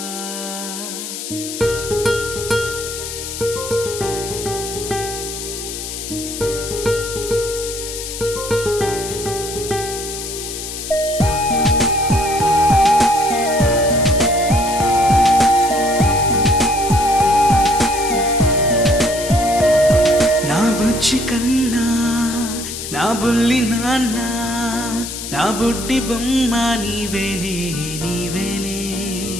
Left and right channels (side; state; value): left; noise; hiss, 8 dB below the sound